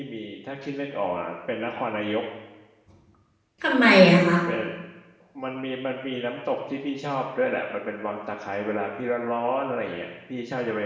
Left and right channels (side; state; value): both; identical; correlation 1.00